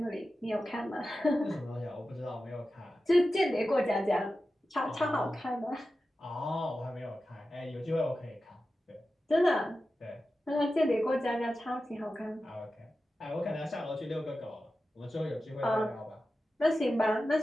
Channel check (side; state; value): both; normal; correlation 0.93